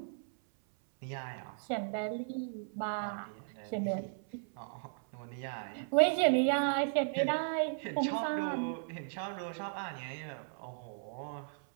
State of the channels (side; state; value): left; silent; 54 dB below the other